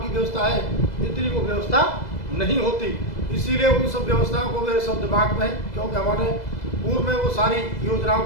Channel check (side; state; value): right; late; 2.0 ms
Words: व्यवस्था है इतनी वो व्यवस्था नहीं होती। इसीलिए उन सब व्यवस्थाओं को मेरे सब दिमाग में है, क्योंकि हमारे पूर्व में वो सारी योजनाओं